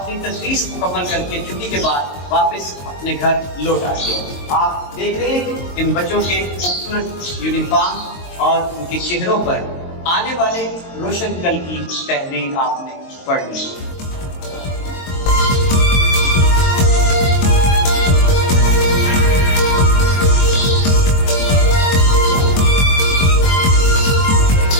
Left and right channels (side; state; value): right; late; 22 ms